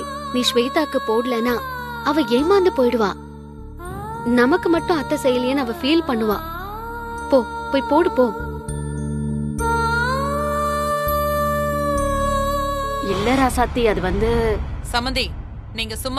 நீ ஸ்வேதாக்கு போடலனா அவ ஏமாந்து போயிடுவா. நமக்கு மட்டும் அத்தை செய்யலையேன்னு அவ ஃபீல் பண்ணுவா. போ, போய் போடு போ. இல்ல ராசாத்தி, அது வந்து சமந்தி, நீங்க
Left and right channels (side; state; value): both; identical; correlation 1.00